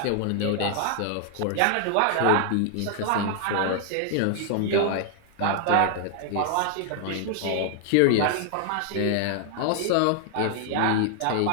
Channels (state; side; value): different; both; correlation 0.00